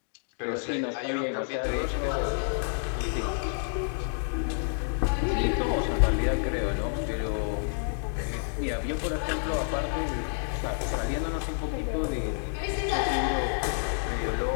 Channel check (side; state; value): right; silent; 59 dB below the other